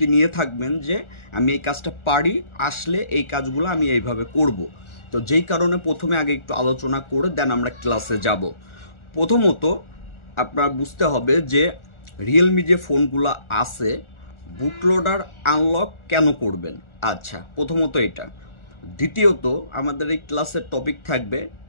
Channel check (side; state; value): right; late; 1.4 ms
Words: নিয়ে থাকবেন যে আমি এই কাজটা পারি, আসলে এই কাজগুলো আমি এইভাবে করব। তো যেই কারণে প্রথমে আগে একটু আলোচনা করে দেন আমরা ক্লাসে যাব। প্রথমত আপনার বুঝতে হবে যে রিয়েলমি যে ফোনগুলো আছে, বুটলোডার আনলক কেন করবেন। আচ্ছা, প্রথমত এটা। দ্বিতীয়ত আমাদের এই ক্লাসের টপিক থাকবে